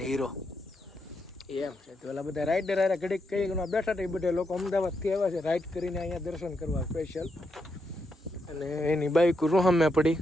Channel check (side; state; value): both; normal; correlation 0.81